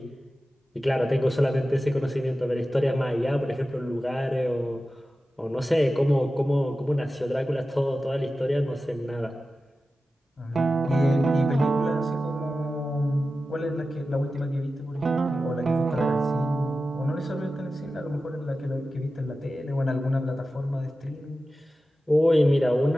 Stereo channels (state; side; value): normal; both; correlation 0.94